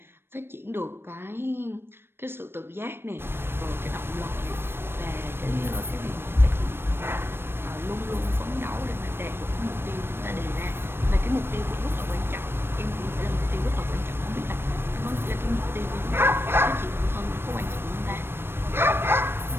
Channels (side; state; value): left; late; 0.11 ms